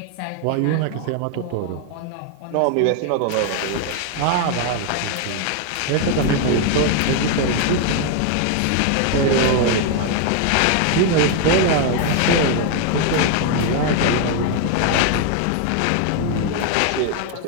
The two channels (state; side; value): different; both; correlation 0.01